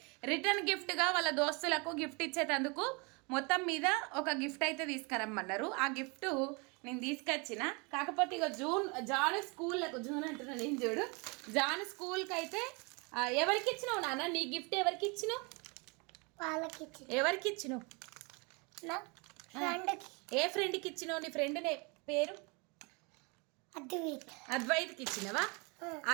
రిటర్న్ గిఫ్ట్గా వాళ్ళ దోస్తులకు గిఫ్ట్ ఇచ్చేటందుకు మొత్తం మీద ఒక గిఫ్ట్ అయితే తీసుకురమ్మన్నారు. ఆ గిఫ్ట్ నేను తీసుకొచ్చిన. కాకపోతే ఇక జాన్ స్కూల్లకు జూన్ అంటున్నా నేను, చూడు జాన్ స్కూల్కి అయితే ఎవరికి ఇచ్చినావు నాన్న? నీ గిఫ్ట్ ఎవరికి ఇచ్చినావు? ఎవరికి ఇచ్చినావు? ఏ ఫ్రెండ్కి ఇచ్చినావు? నీ ఫ్రెండ్ పేరు అద్వైత్కి ఇచ్చినవా?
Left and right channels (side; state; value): left; quieter; 30.4 dB